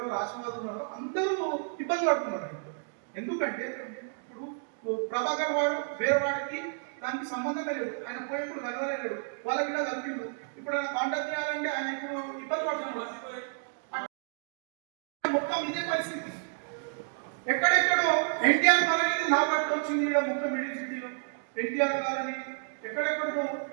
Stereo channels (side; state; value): left; silent; digital silence